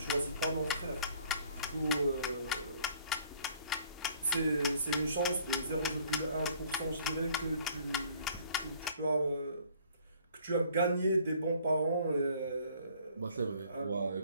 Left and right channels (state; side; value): inverted; both; correlation -0.57